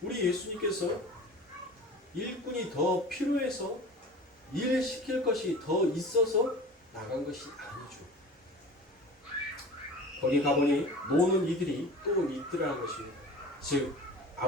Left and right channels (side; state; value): both; normal; correlation 0.39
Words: 우리 예수님께서 일꾼이 더 필요해서 일 시킬 것이 더 있어서 나간 것이 아니죠. 거기 가보니 노는 이들이 또 있더라는 것입니다. 즉